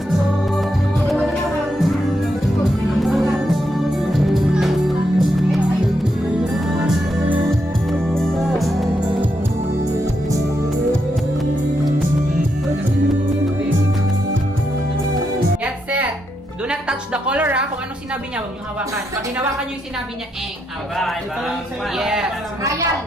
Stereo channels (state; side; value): normal; both; correlation 0.81